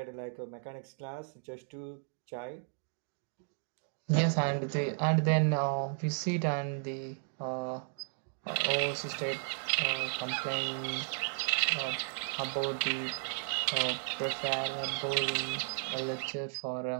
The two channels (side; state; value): left; silent; digital silence